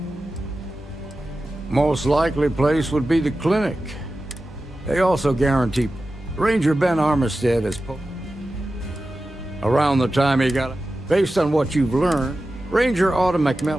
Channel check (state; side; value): normal; both; correlation 0.93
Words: Most likely place would be the clinic. They also guarantee Ranger Ben Armistead is around the time he got it. Based on what you've learned, Ranger Autumn